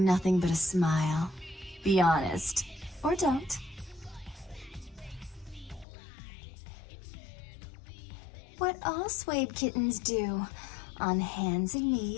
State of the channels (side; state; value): right; drops out; at 5.9 s